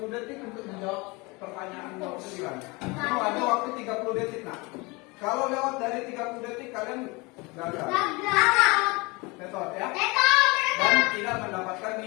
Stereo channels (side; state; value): right; quieter; 25.9 dB